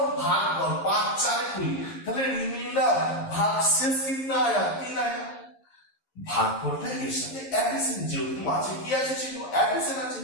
ভাগফল 5 4 এ 20 তাহলে রিমাইন্ডার ভাগশেষ কিतना आया 3 आया ভাগফলটা এর সাথে অ্যাডিশন যেহেতু মাঝে কি আছে ছিল অ্যাডিশন আছে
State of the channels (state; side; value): late; right; 11 ms